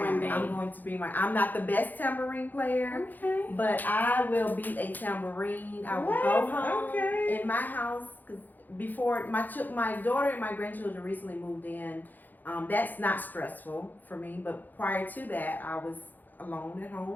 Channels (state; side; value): late; right; 0.085 ms